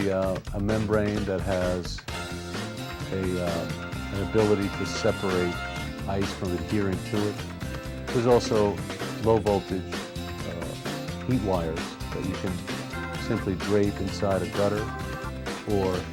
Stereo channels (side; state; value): both; identical; correlation 1.00